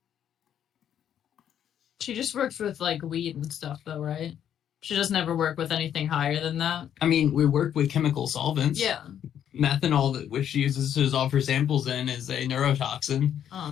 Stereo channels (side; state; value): right; quieter; 9.7 dB